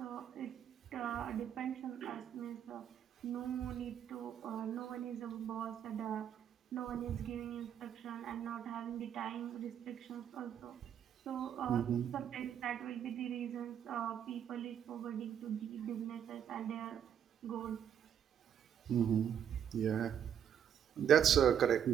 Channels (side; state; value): left; quieter; 9.0 dB